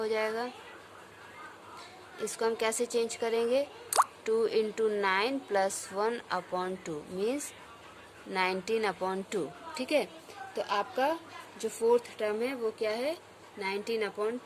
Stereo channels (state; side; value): identical; both; correlation 1.00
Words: जाएगा, इसको हम कैसे चेंज करेंगे, 2 इंटू 9 प्लस 1/2 मीन्स 19/2। ठीक है, तो आपका जो फोर्थ टर्म है वो क्या है